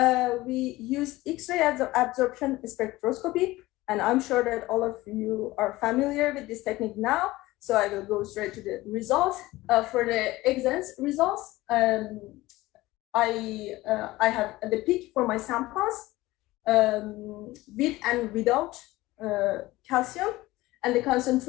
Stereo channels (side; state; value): right; quieter; 18.6 dB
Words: We use X-ray absorption spectroscopy, and I'm sure that all of you are familiar with this technique now. So I will go straight to the results. For the exams results, I have the peak for my samples with and without calcium, and the